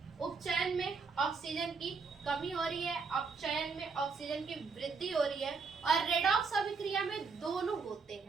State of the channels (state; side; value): quieter; left; 4.8 dB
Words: उपचयन में ऑक्सीजन की कमी हो रही है, अपचयन में ऑक्सीजन की वृद्धि हो रही है, और रेडॉक्स अभिक्रिया में दोनों होते